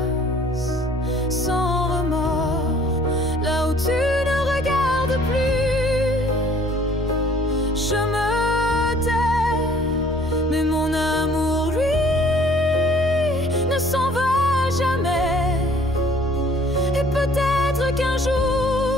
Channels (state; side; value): normal; both; correlation 0.56